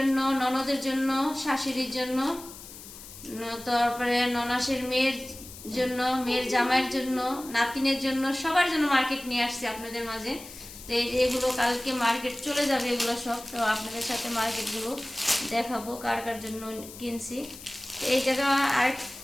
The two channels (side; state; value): left; noise; hiss, 15 dB below the sound